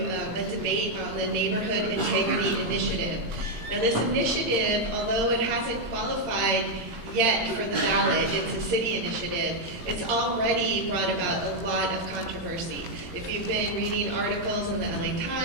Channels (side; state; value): left; late; 18 ms